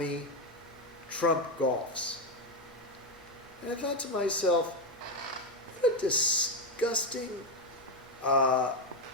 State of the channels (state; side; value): normal; both; correlation 0.08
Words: Trump golfs." And I thought to myself, what a disgusting,